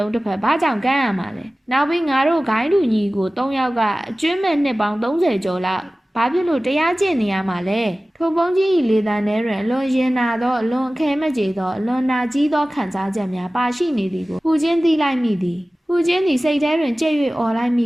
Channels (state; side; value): normal; both; correlation 0.97